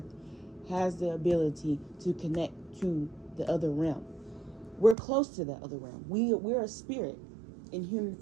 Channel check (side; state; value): left; drops out; at 5.0 s